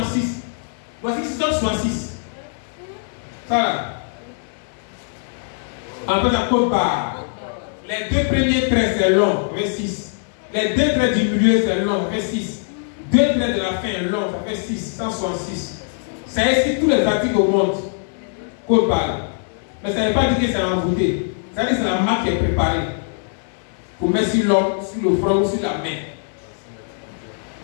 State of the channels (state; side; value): silent; right; digital silence